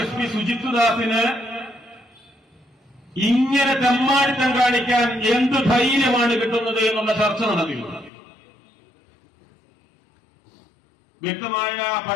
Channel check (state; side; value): drops out; right; at 8.1 s